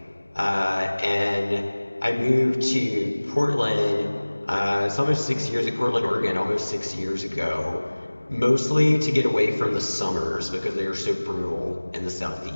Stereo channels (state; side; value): inverted; both; correlation -1.00